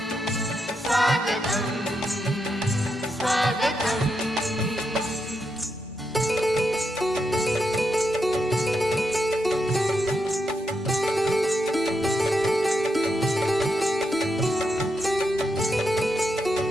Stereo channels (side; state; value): both; normal; correlation 0.83